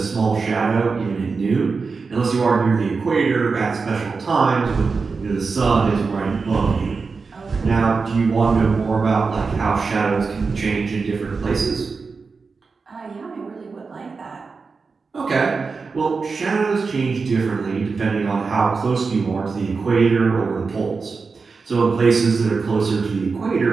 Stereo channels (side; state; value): left; quieter; 4.6 dB